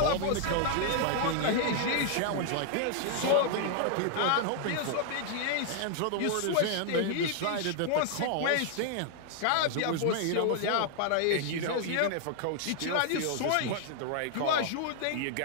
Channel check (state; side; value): different; both; correlation 0.00